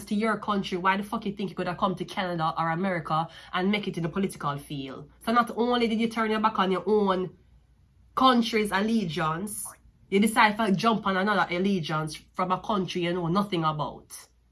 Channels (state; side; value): identical; both; correlation 1.00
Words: to your country, why the fuck you think you could have come to Canada or America and make it in the political field? So not only did you turn your back on your own country's allegiance, you decide to jump on another allegiance from a country you know nothing about.